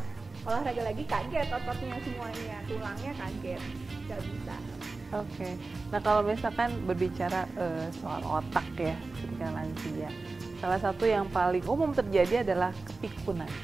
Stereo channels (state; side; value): quieter; left; 3.7 dB